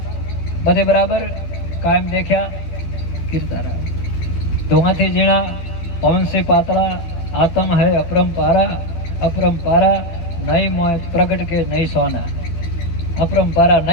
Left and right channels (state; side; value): late; right; 12 ms